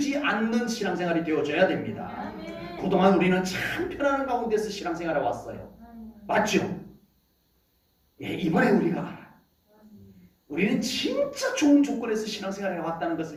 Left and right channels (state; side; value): identical; both; correlation 1.00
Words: 않는 신앙생활이 되어져야 됩니다. 그동안 우리는 참 편안한 가운데서 신앙생활을 왔어요. 맞죠? 예, 이번에 우리가 알아요. 우리는 진짜 좋은 조건에서 신앙생활을 해왔다는